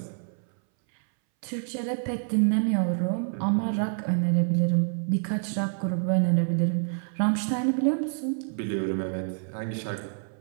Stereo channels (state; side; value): silent; left; 60 dB below the other